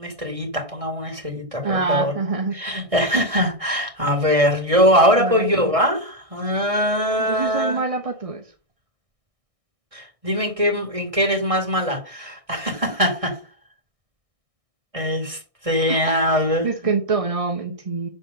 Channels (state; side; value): late; left; 1.6 ms